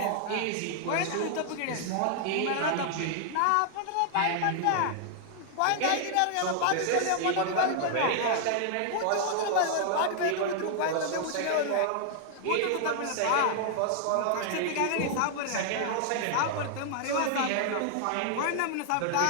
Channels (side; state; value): both; different; correlation 0.00